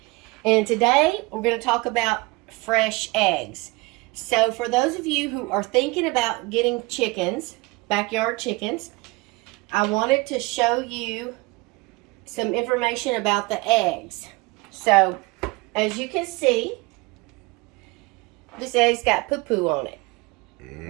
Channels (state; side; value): quieter; left; 24.5 dB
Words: And today we're going to talk about fresh eggs. So for those of you who are thinking about getting chickens, backyard chickens, I wanted to show you some information about the eggs. So as you can see, this egg's got poo-poo on it.